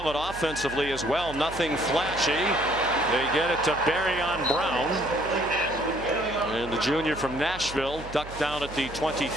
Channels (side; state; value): right; noise; hum, 13 dB below the sound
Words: offensively as well. Nothing flashy. They get it to Barrion Brown. And the junior from Nashville ducked down at the